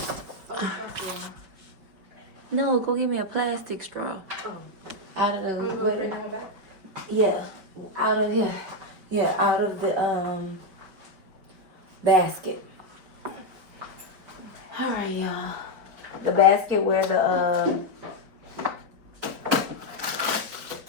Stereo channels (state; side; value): late; left; 5.0 ms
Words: No, go give me a plastic straw. Oh. Out of the Bring that one back? yeah, out of here. Yeah, out of the basket. All right, y'all. The basket where the